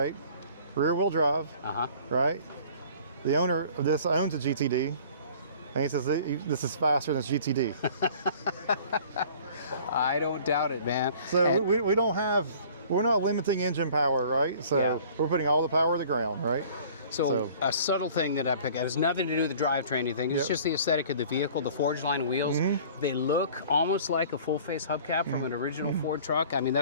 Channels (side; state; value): both; inverted; correlation -0.49